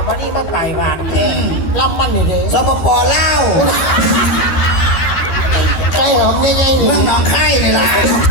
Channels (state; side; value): late; right; 12 ms